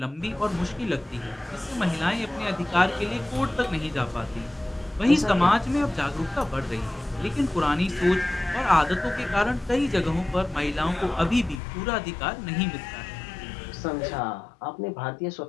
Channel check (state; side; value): drops out; right; at 11.6 s